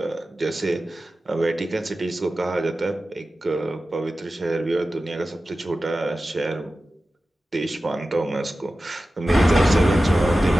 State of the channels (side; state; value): both; normal; correlation 0.94